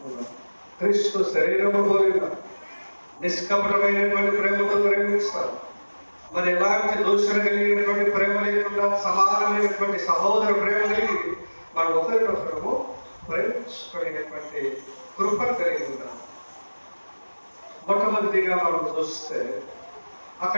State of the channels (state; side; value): inverted; both; correlation -1.00